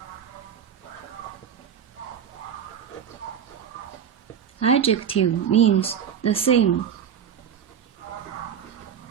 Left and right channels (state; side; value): quieter; left; 8.3 dB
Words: Adjective means the same.